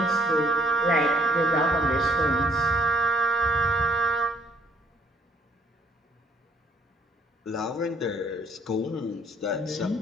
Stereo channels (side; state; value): both; normal; correlation 0.64